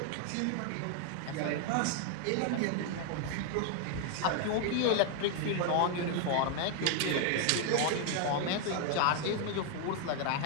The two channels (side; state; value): both; different; correlation 0.00